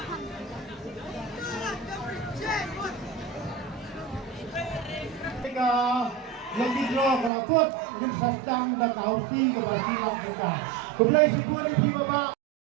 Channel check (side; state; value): left; drops out; at 7.3 s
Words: ka lagi draw kelakut ngin sasdang da kausi ke basi lang kita. Kumlay si Puri Pi Baba.